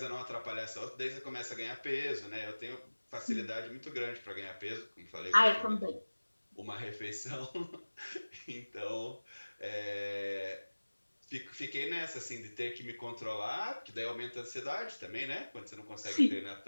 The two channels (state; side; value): inverted; both; correlation -1.00